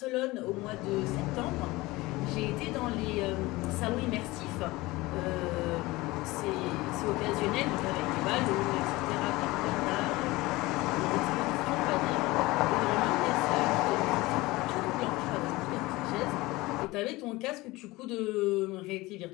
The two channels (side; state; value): right; quieter; 20.7 dB